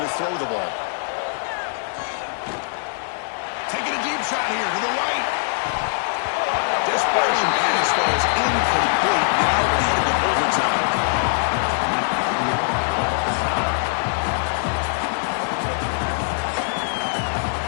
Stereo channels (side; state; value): right; silent; digital silence